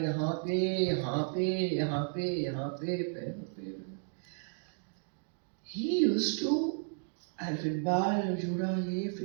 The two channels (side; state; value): left; silent; 55 dB below the other